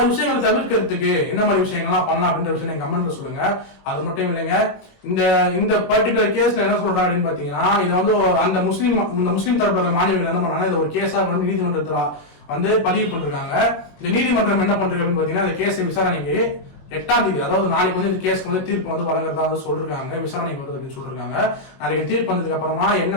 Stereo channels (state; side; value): late; right; 21 ms